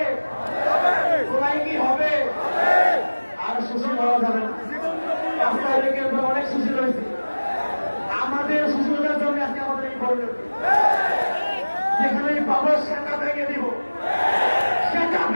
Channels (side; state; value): both; inverted; correlation -1.00